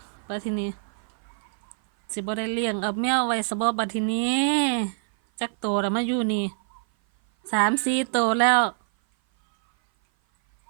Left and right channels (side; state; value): left; silent; 57 dB below the other